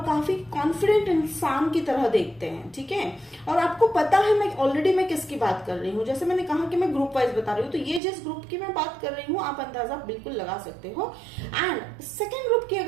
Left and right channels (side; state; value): left; drops out; at 8.0 s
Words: काफी कॉन्फिडेंट इंसान की तरह देखते हैं, ठीक है। और आपको पता है मैं ऑलरेडी मैं किसकी बात कर रही हूँ। जैसे मैंने कहा कि मैं ग्रुप वाइज बता रही हूँ, तो ये जिस ग्रुप की मैं बात कर रही हूँ आप अंदाजा बिल्कुल लगा सकते हो। एंड सेकेंड ग्रुप की